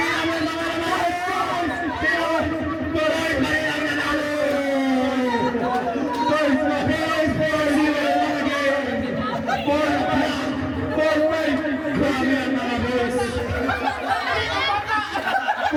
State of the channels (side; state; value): both; identical; correlation 1.00